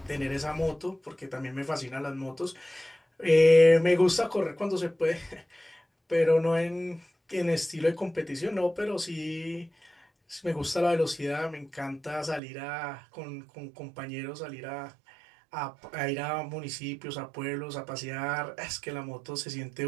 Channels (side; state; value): left; drops out; at 12.4 s